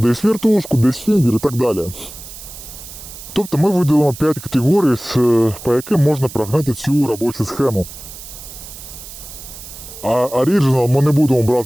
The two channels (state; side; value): noise; right; hiss, 14 dB below the sound